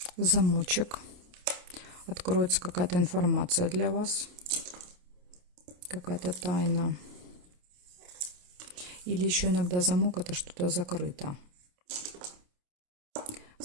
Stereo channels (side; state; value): left; late; 28 ms